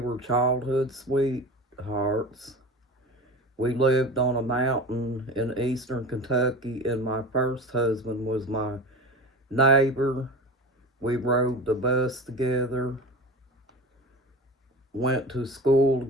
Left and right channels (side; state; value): both; normal; correlation 0.32